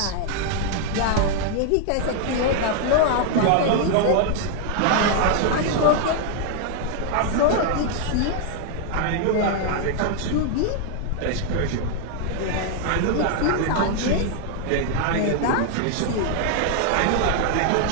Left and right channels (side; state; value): both; different; correlation 0.00